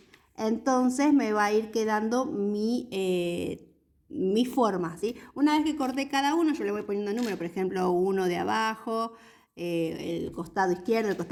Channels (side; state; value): both; identical; correlation 1.00